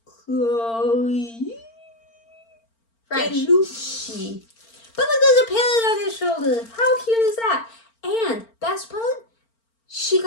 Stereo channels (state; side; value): late; right; 4.4 ms